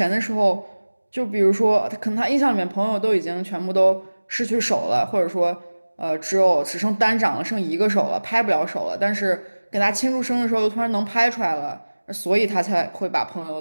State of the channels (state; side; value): inverted; both; correlation -1.00